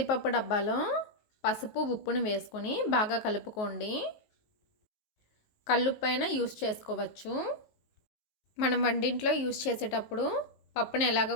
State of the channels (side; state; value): right; late; 19 ms